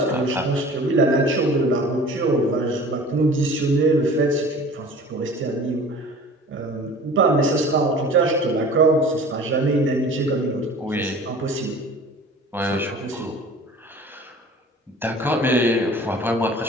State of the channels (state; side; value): normal; both; correlation 0.43